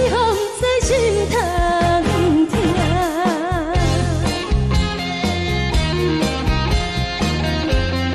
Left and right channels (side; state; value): both; identical; correlation 1.00